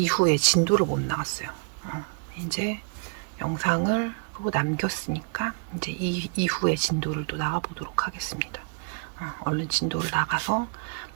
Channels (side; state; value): left; quieter; 36.4 dB